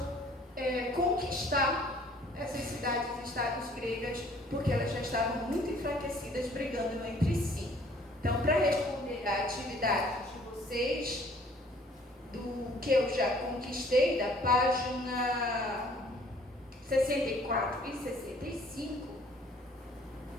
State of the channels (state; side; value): normal; both; correlation 0.57